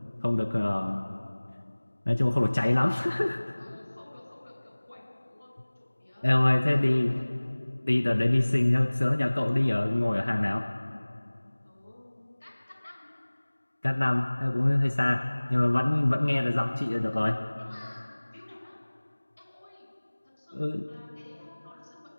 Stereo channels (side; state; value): both; inverted; correlation -1.00